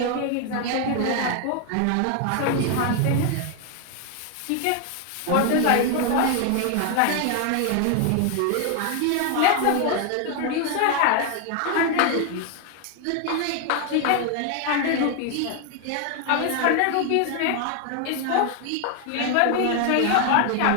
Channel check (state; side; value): different; both; correlation 0.00